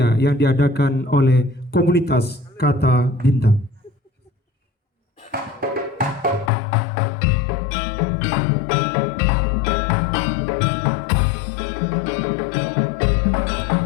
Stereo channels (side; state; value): right; drops out; at 6.5 s